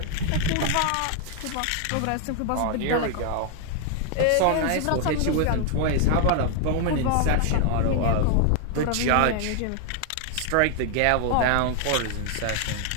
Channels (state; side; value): different; both; correlation 0.00